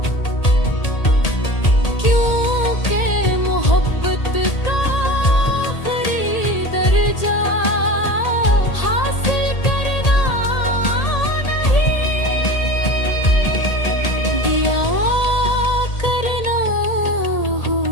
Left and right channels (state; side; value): late; right; 1.8 ms